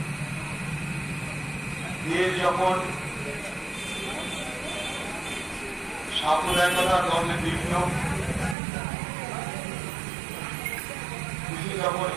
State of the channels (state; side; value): drops out; left; at 8.6 s